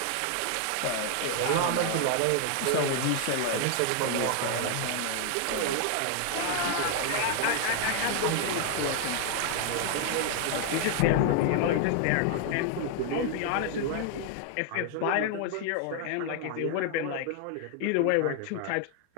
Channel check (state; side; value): different; both; correlation 0.00